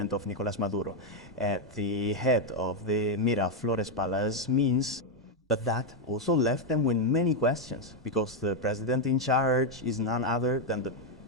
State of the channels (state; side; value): normal; both; correlation 0.02